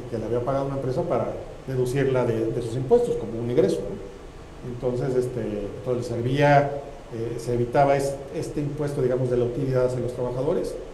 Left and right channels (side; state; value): both; identical; correlation 1.00